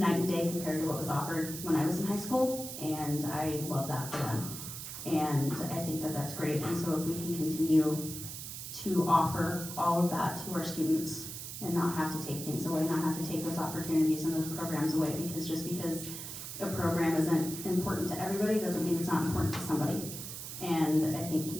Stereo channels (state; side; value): noise; right; hiss, 8 dB below the sound